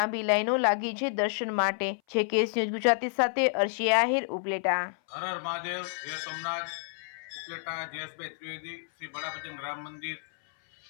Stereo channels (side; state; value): right; silent; 57 dB below the other